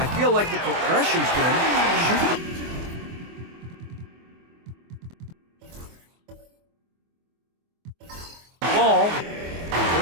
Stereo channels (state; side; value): late; left; 24 ms